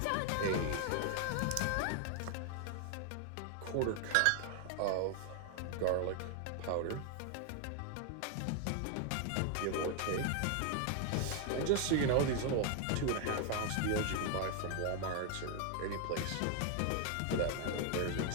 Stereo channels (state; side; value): different; both; correlation 0.00